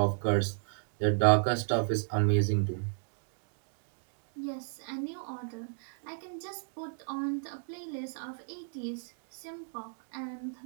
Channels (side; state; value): left; silent; digital silence